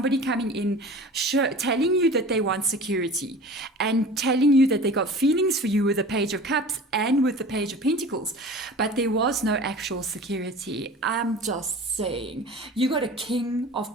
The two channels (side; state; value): both; normal; correlation 0.39